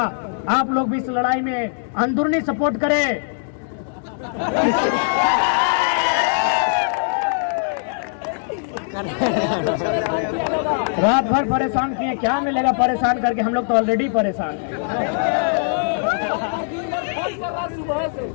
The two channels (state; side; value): silent; right; digital silence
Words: आप लोग भी इस लड़ाई में अंदरूनी सपोर्ट करें। रात भर परेशान किए, क्या मिलेगा परेशान करके? हम लोग तो ऑलरेडी परेशान हैं।